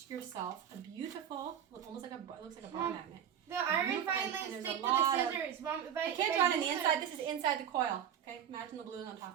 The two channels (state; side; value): quieter; left; 9.2 dB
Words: yourself a beautiful, almost like it looks like a bar magnet. The iron and filings there's stick a to lot the of- scissors. Mom, if I can't draw it on the use inside. This is inside the coil. Okay, imagine the blue on